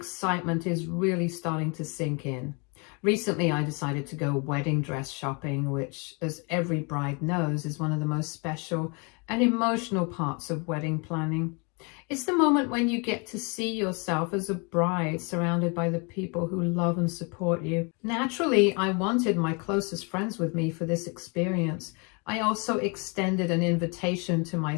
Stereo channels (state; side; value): quieter; right; 33.0 dB